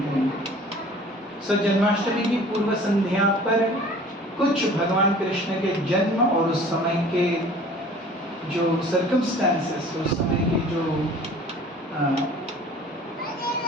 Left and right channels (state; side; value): normal; both; correlation 0.47